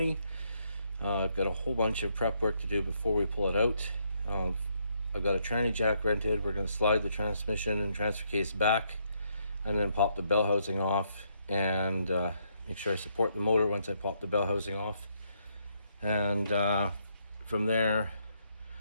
I've got a whole bunch of prep work to do before we pull it out. I've got a tranny jack rented. We're going to slide the transmission and transfer case back and then pop the bell housing off and make sure I support the motor once I pop the bell housing off. And from there,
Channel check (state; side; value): inverted; both; correlation -0.74